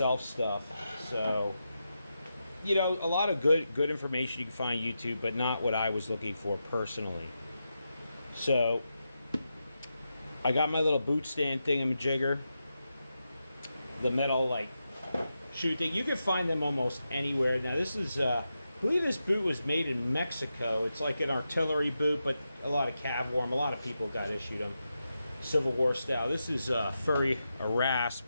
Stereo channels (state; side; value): inverted; both; correlation -0.88